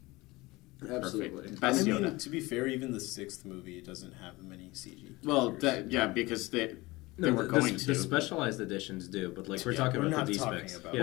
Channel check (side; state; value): right; quieter; 21.5 dB